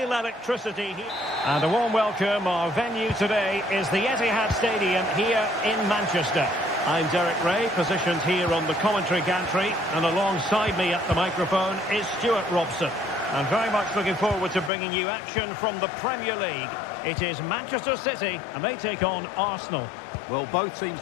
electricity here. And a warm welcome. Our venue today is the Etihad Stadium here in Manchester. I'm Derek Ray, positioned here on the commentary gantry, and alongside me at the microphone is Stuart Robson. I'm very much looking forward to bringing you action from the Premier League. It is Manchester City, and they take on Arsenal. Well, both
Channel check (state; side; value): drops out; right; at 14.7 s